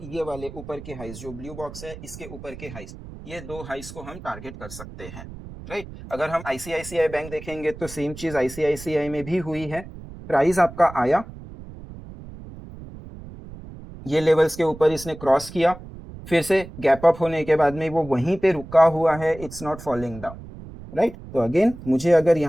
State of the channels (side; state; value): right; noise; rumble, 14 dB below the sound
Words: ये वाले ऊपर के हाइस जो ब्लू बॉक्स है इसके ऊपर के हाइस, ये दो हाइस को हम टारगेट कर सकते हैं, राइट। अगर हम आईसीआईसीआई बैंक देखेंगे तो सेम चीज आईसीआईसीआई में भी हुई है, प्राइस आपका आया, ये लेवल्स के ऊपर इसने क्रॉस किया, फिर से गैप अप होने के बाद में वो वहीं पे रुका हुआ है, it's not falling down, right. तो अगेन मुझे अगर